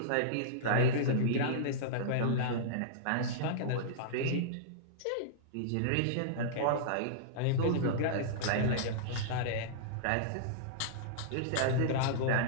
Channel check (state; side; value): different; both; correlation -0.03